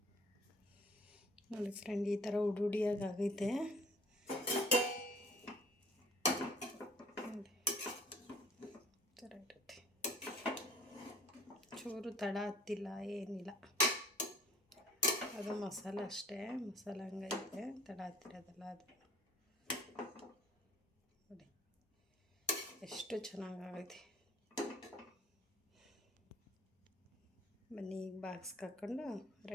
ನೋಡಿ ಫ್ರೆಂಡ್. ಈ ಥರ ಉಡುಡಿಯಾಗಿ ಆಗೈತೆ ಇರುತ್ತೆ. ಚೂರು ತಡ ಹತ್ತಿಲ್ಲ, ಏನಿಲ್ಲ. ಅದು ಮಸಾಲೆ ಅಷ್ಟೇ, ಮಸಾಲೆ ಹಂಗೈತೆ, ತಡ ಹತ್ತಿರೋದಲ್ಲ ಅದು. ನೋಡಿ ಎಷ್ಟು ಚೆನ್ನಾಗೈತೆ. ಬನ್ನಿ ಈಗ ಬಾಕ್ಸ್ಗೆ ಹಾಕ್ಕೊಂಡು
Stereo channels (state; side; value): normal; both; correlation 0.51